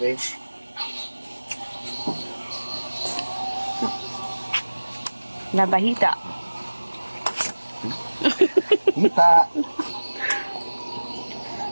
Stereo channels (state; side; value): inverted; both; correlation -1.00